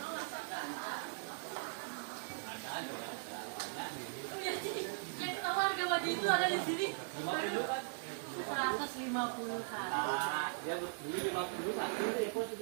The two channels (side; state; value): left; silent; digital silence